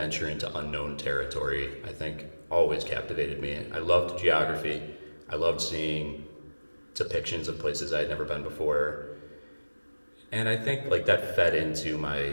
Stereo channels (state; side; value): inverted; both; correlation -1.00